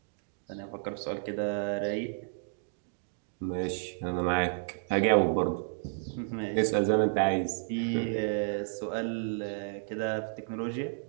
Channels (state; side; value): silent; left; digital silence